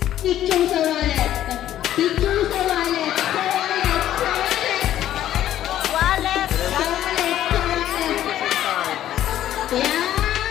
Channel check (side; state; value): right; quieter; 12.1 dB